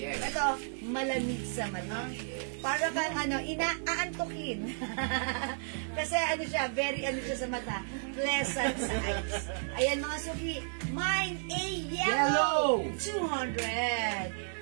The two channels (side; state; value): left; silent; digital silence